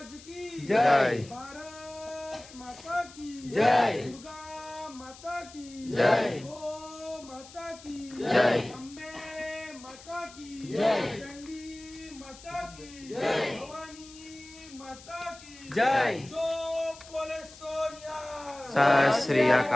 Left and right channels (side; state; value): left; noise; hiss, 19 dB below the sound